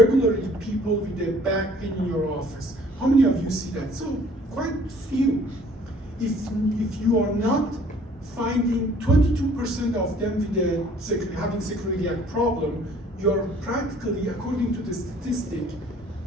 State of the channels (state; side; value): normal; both; correlation 0.55